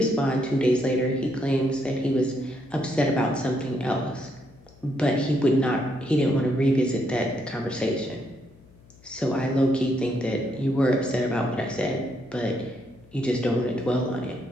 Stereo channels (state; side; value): noise; left; hum, 25 dB below the sound